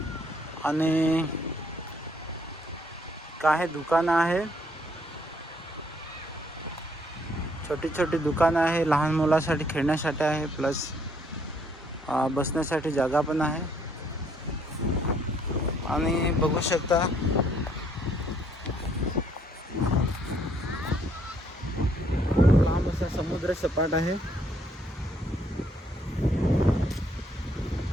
आणि काही दुकानं आहे, छोटी छोटी दुकानं आहे. लहान मुलासाठी खेळण्यासाठी आहे, प्लस बसण्यासाठी जागा पण आहे. आणि बघू शकता लांब असा समुद्र सपाट आहे.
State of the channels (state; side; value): normal; both; correlation 0.67